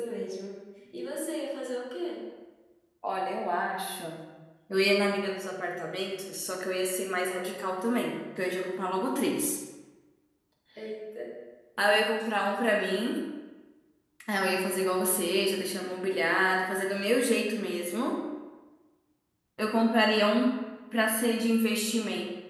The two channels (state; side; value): identical; both; correlation 1.00